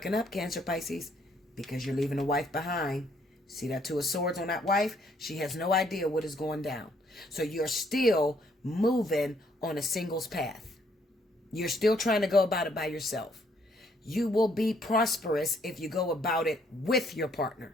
up, Cancer, Pisces, because you're leaving the wife behind. See that Two of Swords on that wife? She has no idea what is going down. So you're still moving on a singles path. You're still trying to go about it by yourself. You will be prosperous if you go about it with your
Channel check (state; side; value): normal; both; correlation 0.68